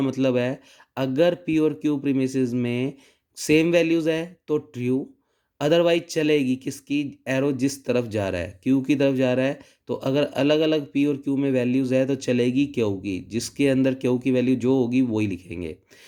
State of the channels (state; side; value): identical; both; correlation 1.00